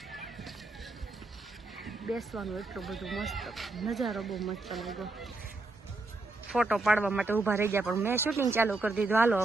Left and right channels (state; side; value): quieter; left; 3.3 dB